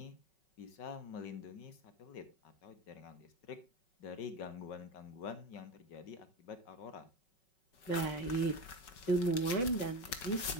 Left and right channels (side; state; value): right; late; 5.4 ms